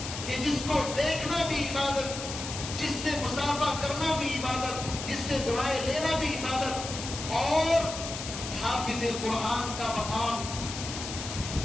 کہ جس کو دیکھنا بھی عبادت، جس سے مصافحہ کرنا بھی عبادت، جس سے دعائیں لینا بھی عبادت، اور حافظ قرآن کا مقام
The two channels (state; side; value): noise; left; hiss, 7 dB below the sound